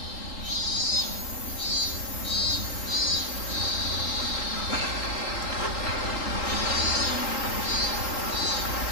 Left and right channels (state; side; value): late; right; 3.9 ms